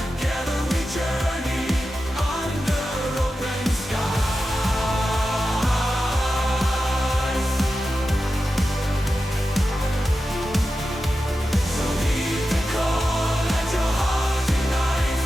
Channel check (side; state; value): both; normal; correlation 0.91